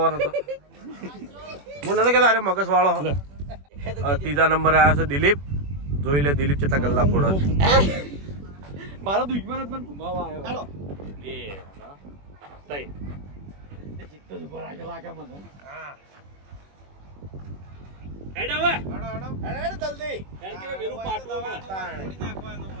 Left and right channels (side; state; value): left; late; 21 ms